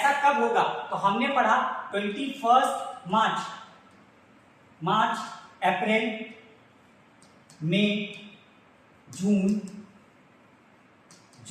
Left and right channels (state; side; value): identical; both; correlation 1.00